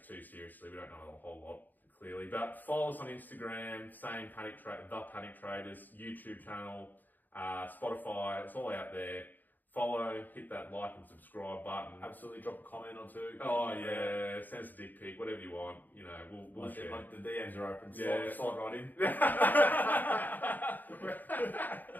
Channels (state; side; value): late; right; 0.086 ms